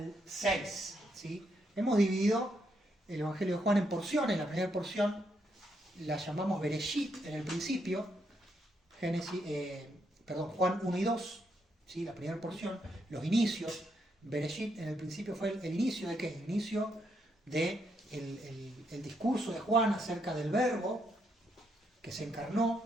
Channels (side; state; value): both; normal; correlation 0.78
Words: 6, ¿sí? Hemos dividido el Evangelio de Juan en porciones. La primera porción la llamamos Bereshit en el principio, Juan 1 y 2, ¿sí? La primera porción, los inicios. Bereshit en el principio fue el inicio de ¿qué? El inicio de el discurso de Juan acerca del Verbo que se